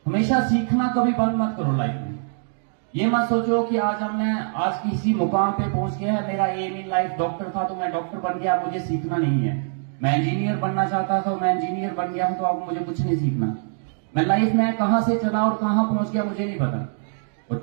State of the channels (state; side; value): silent; left; digital silence